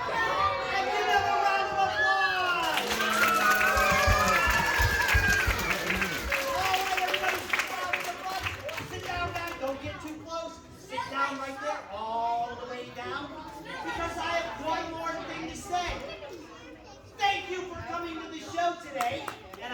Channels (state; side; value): identical; both; correlation 1.00